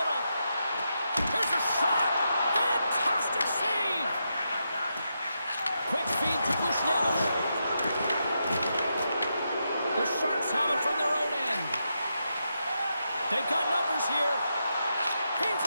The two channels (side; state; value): both; inverted; correlation -0.84